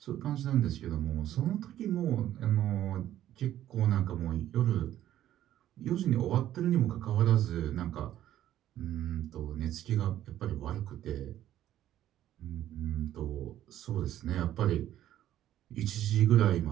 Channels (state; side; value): quieter; left; 12.4 dB